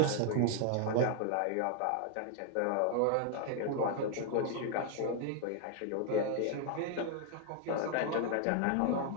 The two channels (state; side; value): different; both; correlation 0.00